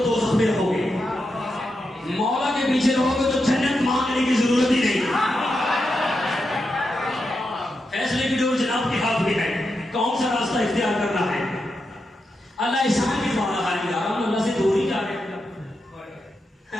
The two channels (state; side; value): normal; both; correlation 0.86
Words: دوزخ میں رہو گے، مولا کے پیچھے رہو گے تو جنت مانگنے کی ضرورت ہی نہیں. فیصلے کی ڈور جناب کے ہاتھ میں ہے، کون سا راستہ اختیار کرنا ہے. اللہ احسان کی بات ہے یار، ہم اللہ سے دور ہی جا رہے